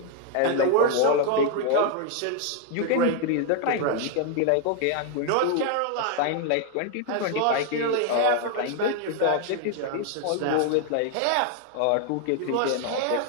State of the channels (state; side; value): different; both; correlation 0.00